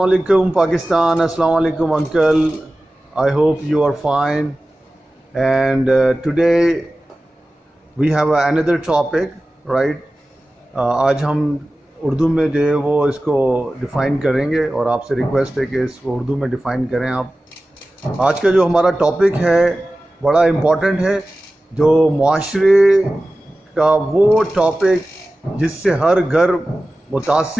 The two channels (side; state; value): both; normal; correlation 0.96